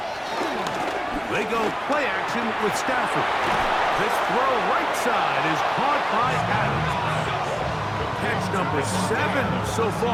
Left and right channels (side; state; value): both; identical; correlation 1.00